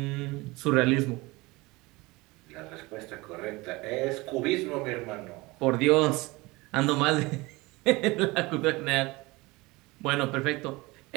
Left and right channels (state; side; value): quieter; left; 22.7 dB